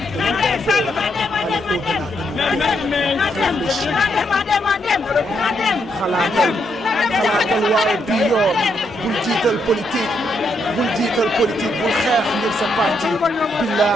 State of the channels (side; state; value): both; normal; correlation 0.78